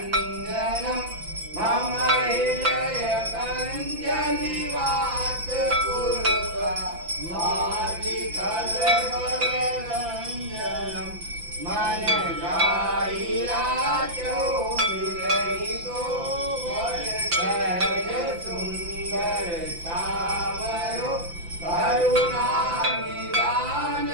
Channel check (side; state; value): left; late; 5.9 ms